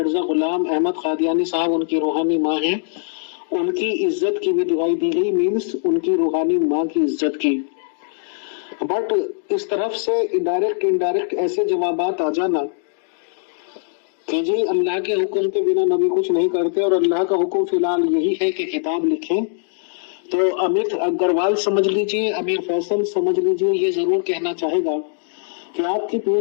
غلام احمد قادیانی صاحب ان کی روحانی ماں ہیں، ان کی عزت کی بھی دعائی دی گئی، مینس ان کی روحانی ماں کی عزت کی۔ بٹ اس طرف سے انڈائریکٹ ایسے جوابات آ جانا کہ جی اللہ کے حکم کے بنا نبی کچھ نہیں کرتے، اور اللہ کا حکم فی الحال یہی ہے کہ کتاب لکھیں، تو امت اگروال سمجھ لیجئے، امیر فیصل سمجھ لیجئے، یہ ضرور کہنا چاہے گا کہ آپ کی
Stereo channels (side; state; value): right; silent; 65 dB below the other